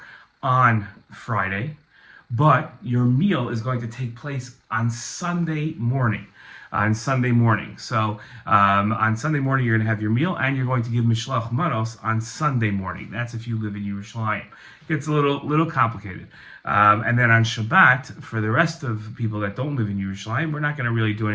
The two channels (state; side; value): identical; both; correlation 1.00